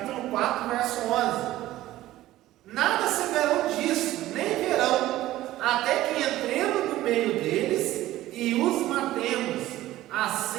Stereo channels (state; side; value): quieter; left; 15.4 dB